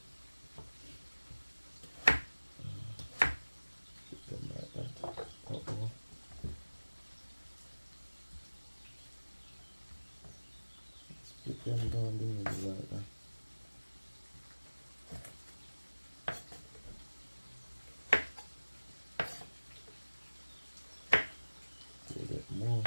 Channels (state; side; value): inverted; both; correlation -1.00